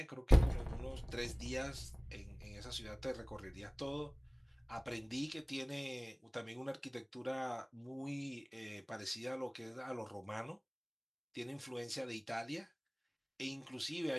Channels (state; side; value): identical; both; correlation 1.00